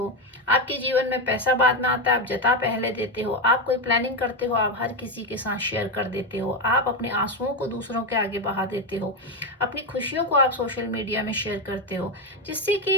आपके जीवन में पैसा बाद में आता है, आप जता पहले देते हो। आप कोई प्लानिंग करते हो, आप हर किसी के साथ शेयर कर देते हो। आप अपने आंसुओं को दूसरों के आगे बहा देते हो, अपनी खुशियों को आप सोशल मीडिया में शेयर करते हो, जिससे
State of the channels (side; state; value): both; normal; correlation 0.09